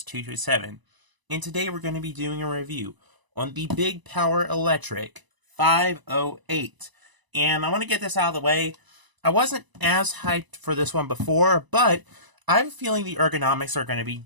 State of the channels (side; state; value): left; late; 1.0 ms